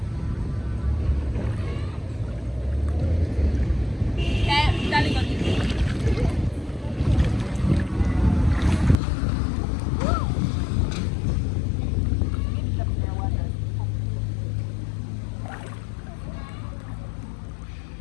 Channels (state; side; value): drops out; right; at 9.0 s